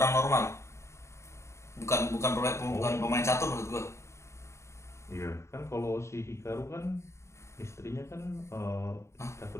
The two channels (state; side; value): late; right; 0.14 ms